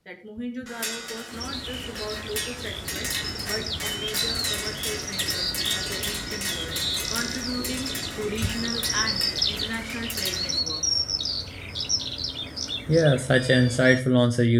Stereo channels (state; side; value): identical; both; correlation 1.00